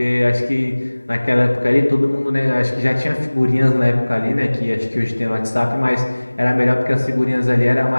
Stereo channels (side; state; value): both; inverted; correlation -1.00